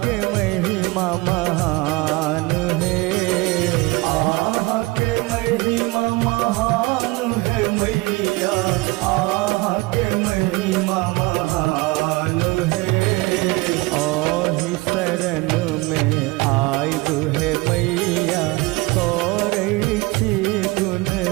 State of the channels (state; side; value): quieter; left; 23.4 dB